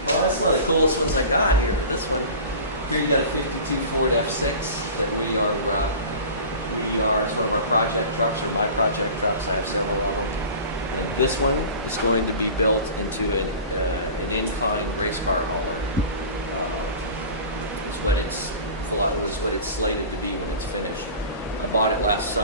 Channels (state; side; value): inverted; both; correlation -0.37